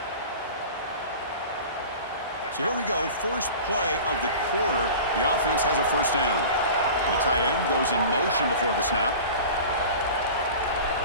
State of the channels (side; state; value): both; inverted; correlation -0.37